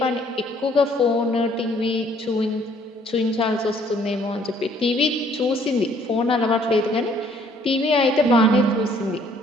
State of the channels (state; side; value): normal; both; correlation 0.62